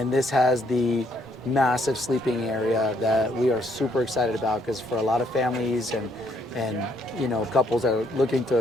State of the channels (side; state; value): both; normal; correlation 0.69